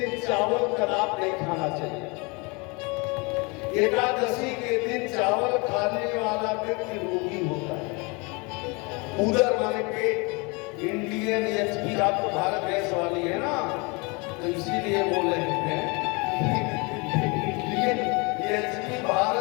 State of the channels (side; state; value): right; quieter; 29.2 dB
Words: चावल कदाप नहीं खाना चाहिए। एकादशी के दिन चावल खाने वाला व्यक्ति रोगी होता है। उधर माने पेट। इंडियन एचपी, आप तो भारत गैस वाली है ना, तो इसीलिए बोल रहे हैं इंडियन एचपी